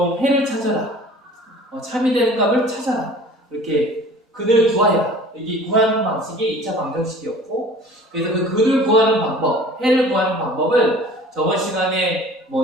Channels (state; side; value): normal; both; correlation 0.46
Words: 해를 찾아라. 참이 되는 값을 찾아라. 이렇게 근을 구하여라. 이게 구하는 방식이 2차 방정식이었고 그래서 그 근을 구하는 방법, 해를 구하는 방법을 저번 시간에